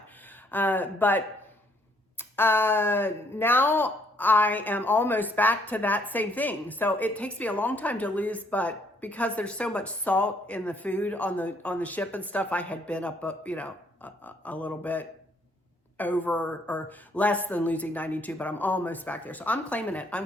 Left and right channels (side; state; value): both; normal; correlation 0.67